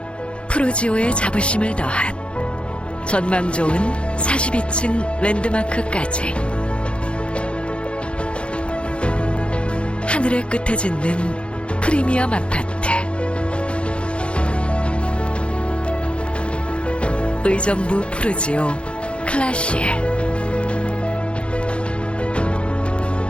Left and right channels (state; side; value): late; right; 0.058 ms